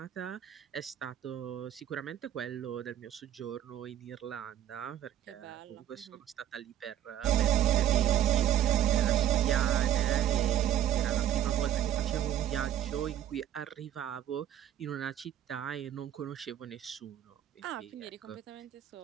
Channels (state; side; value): quieter; left; 11.1 dB